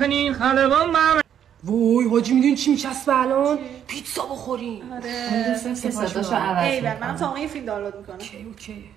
خلبان من. وای حاجی میدونی چی میچسبه الان؟ پیتزا بخوریم. اون دوستم که صداشو عوض میکنه. من تا این فیلم دانلود میکنم. اوکی.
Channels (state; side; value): quieter; left; 9.3 dB